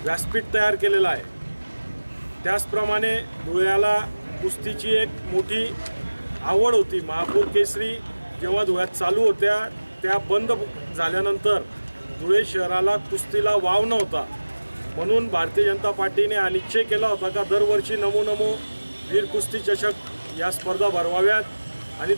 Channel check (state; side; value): inverted; both; correlation -1.00